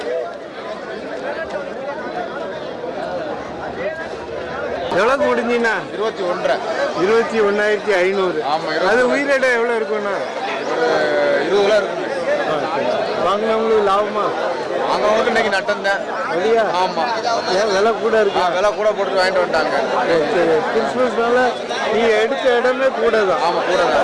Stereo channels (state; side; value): identical; both; correlation 1.00